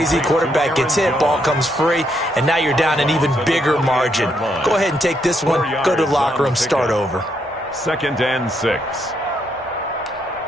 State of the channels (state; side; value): normal; both; correlation 0.76